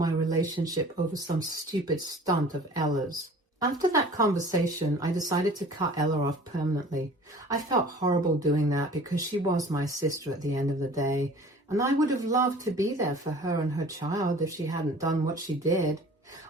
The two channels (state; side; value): normal; both; correlation 0.46